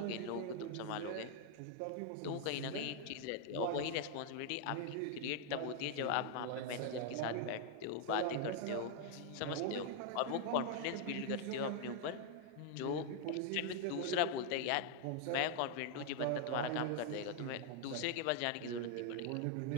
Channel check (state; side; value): different; both; correlation 0.00